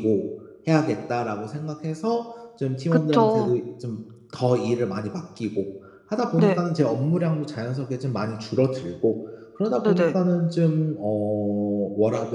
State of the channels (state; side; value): identical; both; correlation 1.00